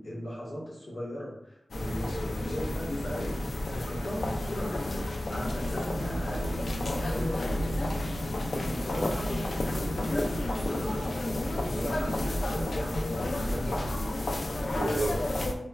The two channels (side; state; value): both; normal; correlation 0.95